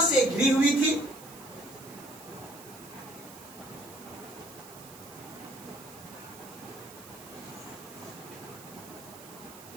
से घिरी हुई थी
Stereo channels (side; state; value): right; noise; hiss, 17 dB below the sound